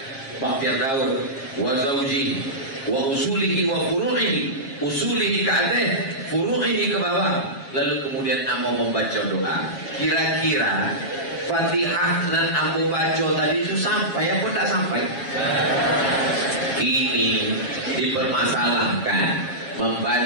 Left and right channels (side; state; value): right; late; 7.4 ms